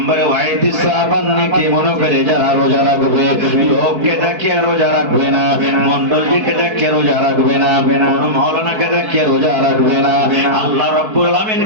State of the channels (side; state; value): left; late; 4.6 ms